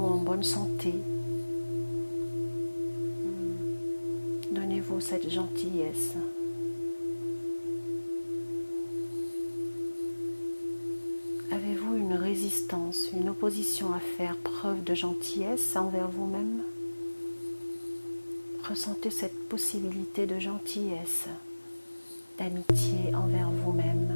bonne santé. Donnez-vous cette gentillesse. Avez-vous une résistance, une opposition à faire preuve de gentillesse envers vous-même? Ressentez cette possibilité de gentillesse, d'amitié envers vous-même.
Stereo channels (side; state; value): both; inverted; correlation -1.00